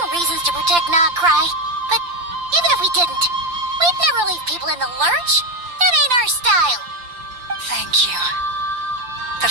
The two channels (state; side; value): late; left; 5.8 ms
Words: reasons to protect Nodcry, but even if we didn't, we'd never leave people in the lurch. That ain't our style. Thank you. The